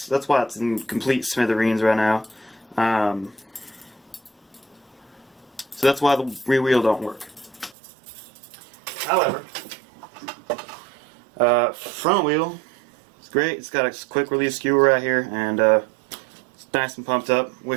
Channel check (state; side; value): drops out; left; at 7.8 s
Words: why it's in complete smithereens right now. So that's why the rear wheel don't work. However, front wheel. Great, it's got a quick release skewer right here, and it's nice and pumped up.